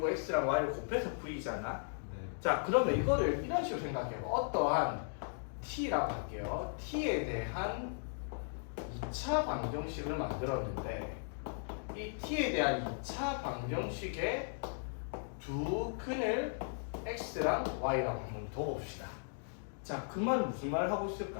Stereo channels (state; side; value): silent; right; digital silence